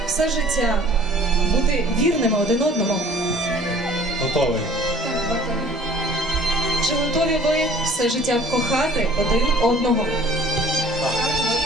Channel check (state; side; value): normal; both; correlation 0.52